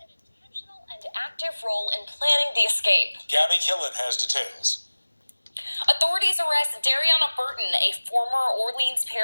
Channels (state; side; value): inverted; both; correlation -1.00